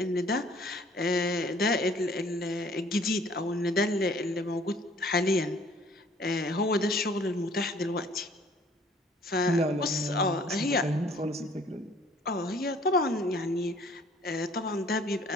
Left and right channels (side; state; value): both; normal; correlation 0.56